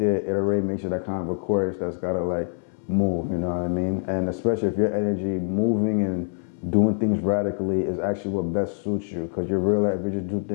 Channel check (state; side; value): silent; right; 62 dB below the other